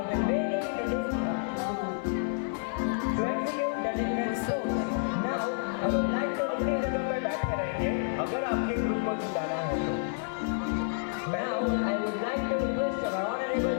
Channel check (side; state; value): right; silent; digital silence